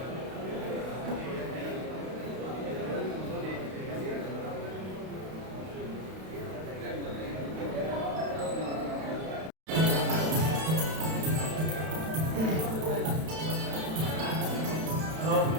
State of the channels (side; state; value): left; late; 32 ms